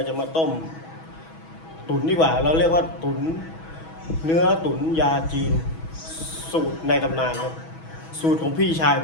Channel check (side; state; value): right; late; 6.2 ms